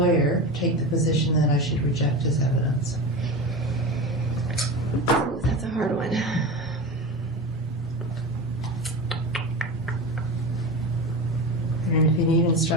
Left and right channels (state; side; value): normal; both; correlation 0.26